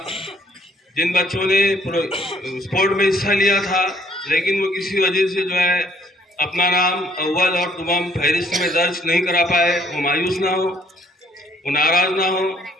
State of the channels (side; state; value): both; normal; correlation 0.64